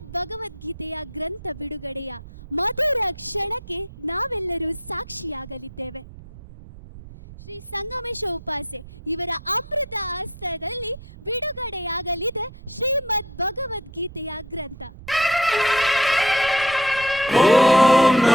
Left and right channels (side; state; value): right; noise; rumble, 16 dB below the sound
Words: ಭಗವದ್ಗೀತೆಯ ಗ್ರಂಥ ಬಿಡುಗಡೆಯ ಮಧುರ ಕ್ಷಣಕ್ಕೆ ನಾವೆಲ್ಲರೂ ಸಾಕ್ಷಿಯಾಗಲಿದ್ದೇವೆ. ಶ್ರೀ ಸಂಗಮೇಶ ಉಪಾಸೆ ಇವರ ಅಮೃತ ಹಸ್ತದಲ್ಲಿ ಬಿಡುಗಡೆಯಾಗಲಿದೆ ಶ್ರೀಮದ್ ಭಗವದ್ಗೀತೆಯ ಗ್ರಂಥ. ಓಂ